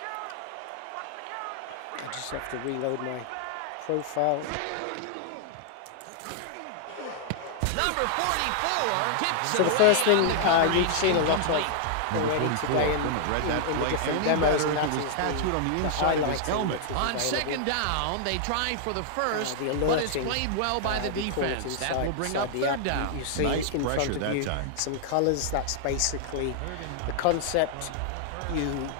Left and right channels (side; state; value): both; different; correlation -0.01